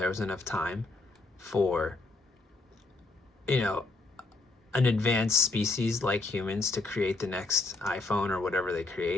was enough time for, you know, an advanced species like humans to create the next iPhone or whatever they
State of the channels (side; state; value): right; quieter; 3.3 dB